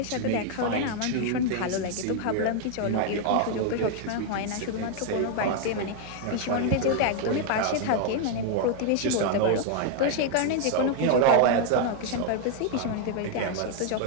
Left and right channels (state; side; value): different; both; correlation 0.00